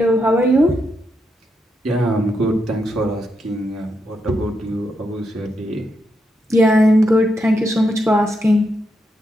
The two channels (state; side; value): normal; both; correlation 0.82